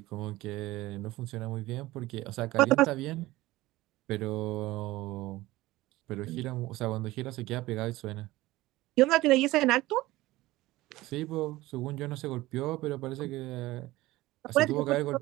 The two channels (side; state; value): left; quieter; 18.3 dB